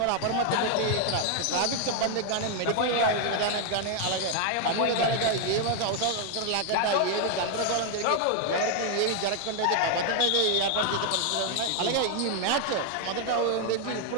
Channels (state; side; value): different; both; correlation 0.00